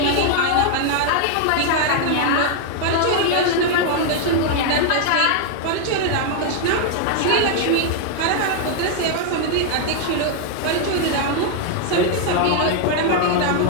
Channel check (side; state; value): both; different; correlation 0.00